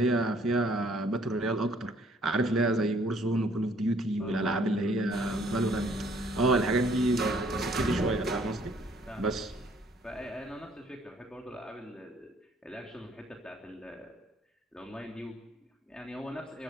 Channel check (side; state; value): both; normal; correlation 0.62